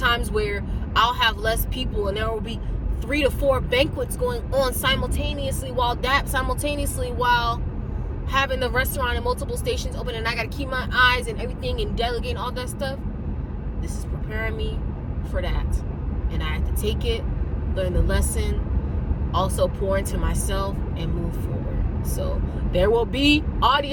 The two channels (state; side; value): identical; both; correlation 1.00